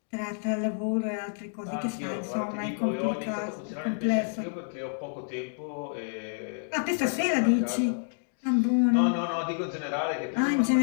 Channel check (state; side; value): silent; right; digital silence